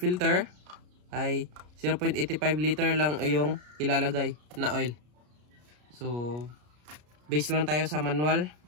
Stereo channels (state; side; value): late; left; 33 ms